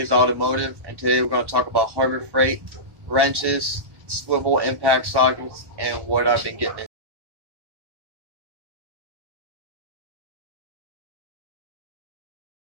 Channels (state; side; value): late; left; 1.1 ms